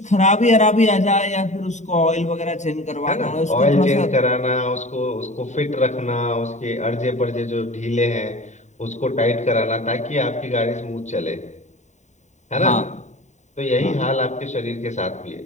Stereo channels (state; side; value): late; right; 0.34 ms